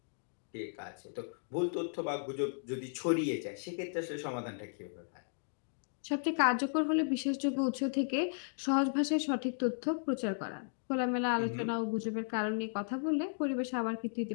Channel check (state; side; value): silent; right; digital silence